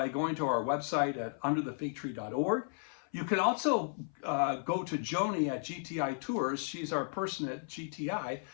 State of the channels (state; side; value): silent; right; 55 dB below the other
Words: going to our website at underthefigtree.org. You can also go to Joni at GTI Tours. She's our person at GTI,